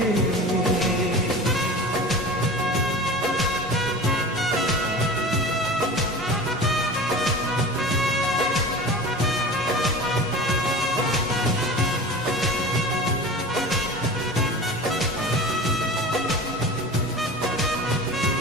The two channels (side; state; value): both; normal; correlation 0.34